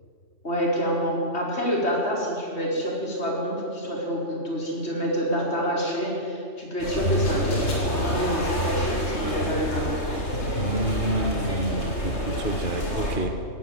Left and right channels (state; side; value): late; right; 3.3 ms